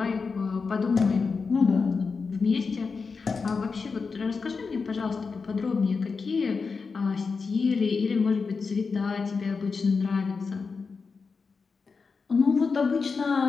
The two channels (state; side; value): quieter; right; 4.9 dB